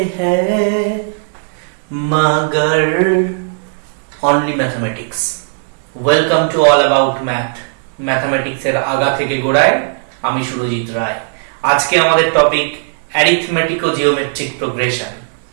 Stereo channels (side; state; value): left; silent; digital silence